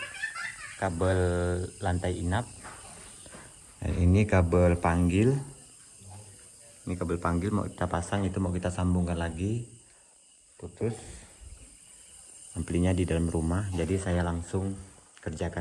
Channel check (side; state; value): both; identical; correlation 1.00